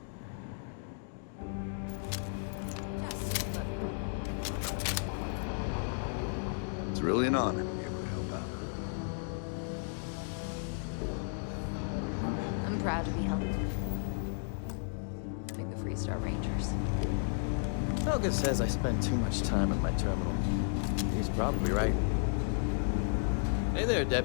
Just let me drink in peace. It's really an honor to be able to help out. I'm proud to be helping the Freestar Rangers. Helga says I spend too much time at my terminal. He's probably right. Hey there,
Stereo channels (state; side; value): silent; right; digital silence